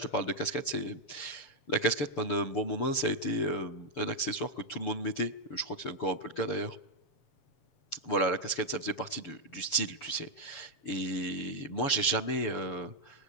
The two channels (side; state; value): right; late; 6.9 ms